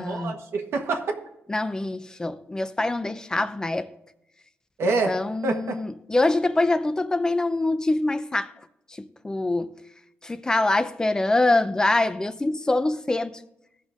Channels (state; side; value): normal; both; correlation 0.92